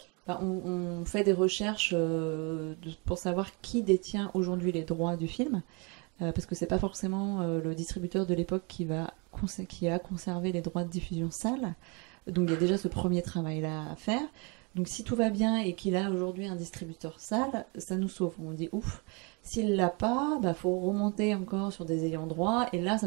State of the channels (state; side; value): quieter; left; 31.5 dB